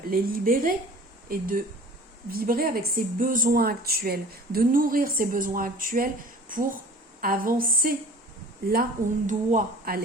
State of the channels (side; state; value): both; normal; correlation 0.45